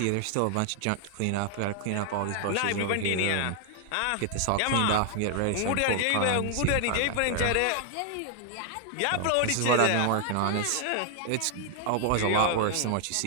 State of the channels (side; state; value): both; different; correlation 0.00